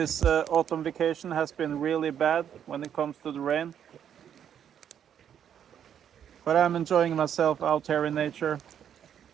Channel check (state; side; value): quieter; left; 9.1 dB